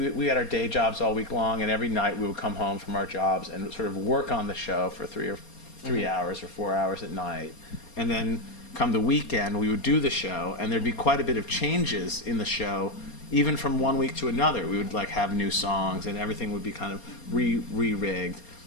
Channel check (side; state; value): right; late; 4.3 ms